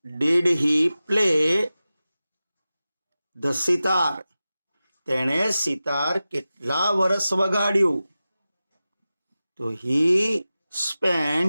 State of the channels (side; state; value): both; inverted; correlation -0.95